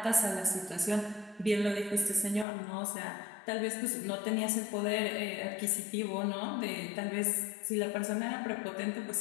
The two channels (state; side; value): drops out; right; at 2.5 s